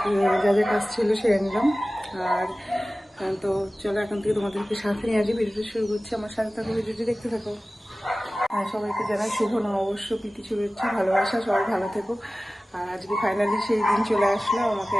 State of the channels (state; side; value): normal; both; correlation 0.97